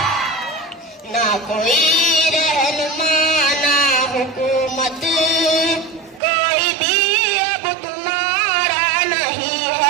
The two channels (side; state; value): left; drops out; at 6.2 s